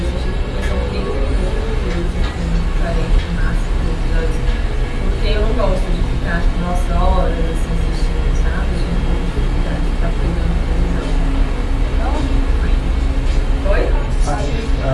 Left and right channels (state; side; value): identical; both; correlation 1.00